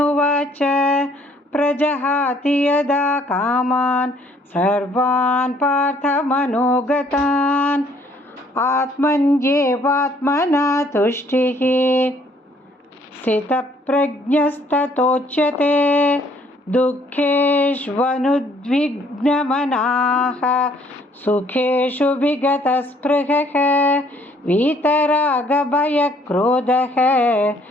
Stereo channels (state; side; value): normal; both; correlation 0.63